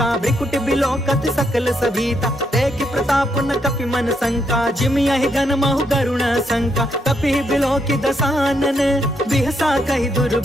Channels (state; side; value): normal; both; correlation 0.77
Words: भ्रिकुट बिलोकत सकल सभीता। देखि प्रताप न कपि मन शंका, जिम यहि गन महु गरुण शंका। कपि बिलोकि दसानन, बिहसा कहि